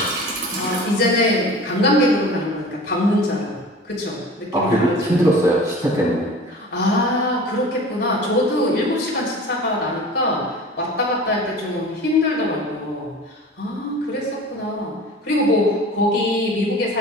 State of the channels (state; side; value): normal; both; correlation 0.39